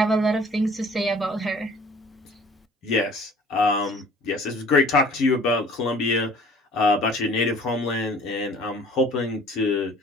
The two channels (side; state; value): both; normal; correlation 0.51